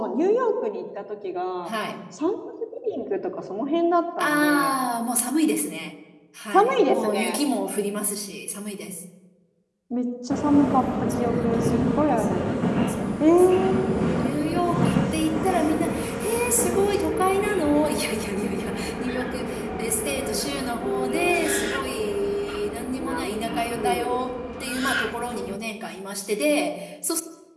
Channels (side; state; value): both; identical; correlation 1.00